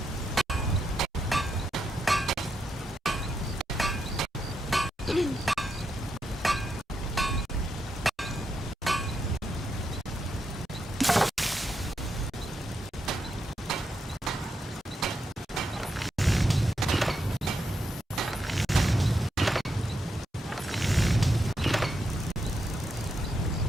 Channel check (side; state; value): both; normal; correlation 0.83